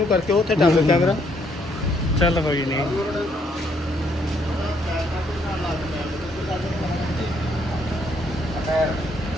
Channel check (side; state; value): both; normal; correlation 0.70